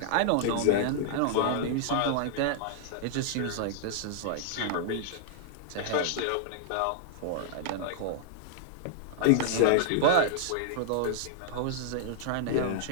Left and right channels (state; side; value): different; both; correlation -0.01